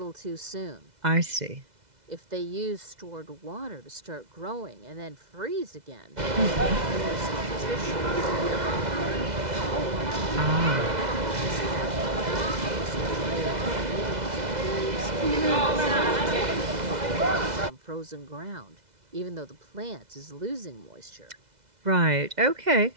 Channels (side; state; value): left; late; 2.0 ms